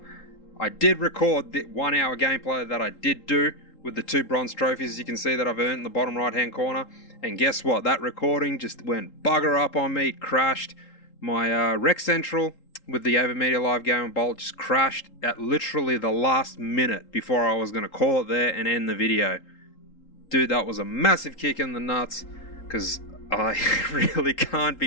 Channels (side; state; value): right; late; 3.8 ms